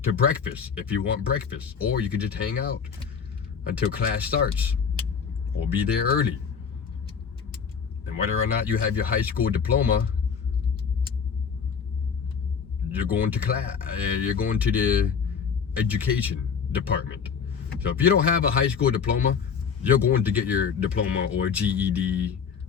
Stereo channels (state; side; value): quieter; right; 6.4 dB